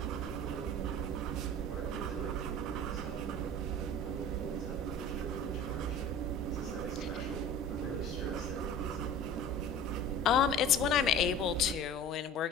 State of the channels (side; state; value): both; normal; correlation 0.40